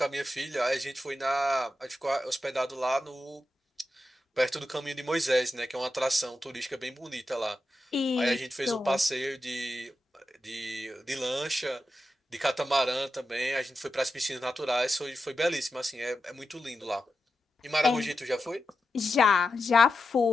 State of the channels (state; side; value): normal; both; correlation 0.89